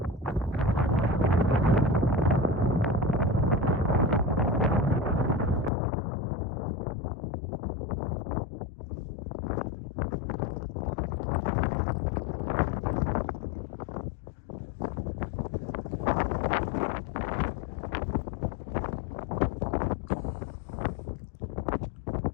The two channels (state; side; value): drops out; right; at 5.7 s